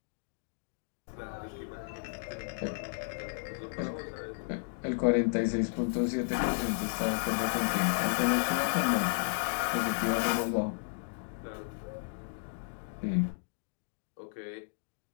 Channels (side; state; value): right; silent; digital silence